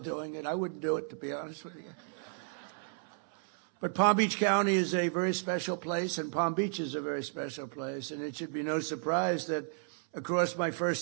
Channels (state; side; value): silent; left; 56 dB below the other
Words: it. I wouldn't do it, to be honest with you. But Palm Beach County is a very special place, and Palm Beach is a very special place. And it should be no surprise that across my